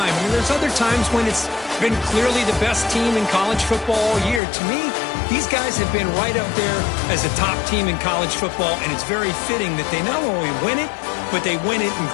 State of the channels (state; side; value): drops out; right; at 4.4 s